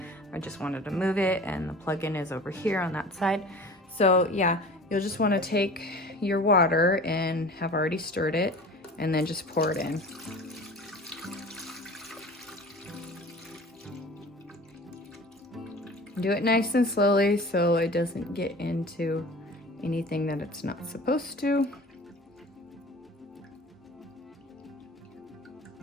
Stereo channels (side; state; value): both; normal; correlation 0.40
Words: I just wanted to move it, and the plug-in is over here on that side. So yeah, you'll just want to take your water and have already stirred it and then just pour it in. Do it nice and slowly so it doesn't get into anything that it's not supposed to.